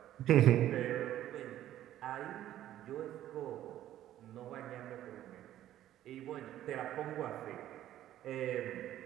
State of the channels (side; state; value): left; quieter; 12.7 dB